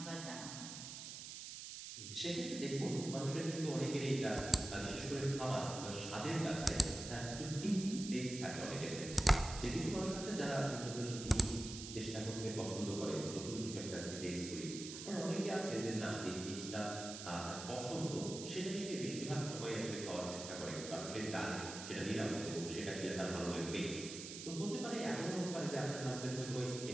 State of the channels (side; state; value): right; noise; hiss, 9 dB below the sound